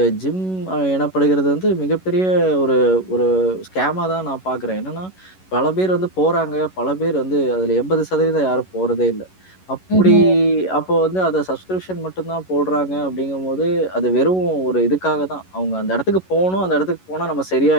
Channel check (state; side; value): late; right; 11 ms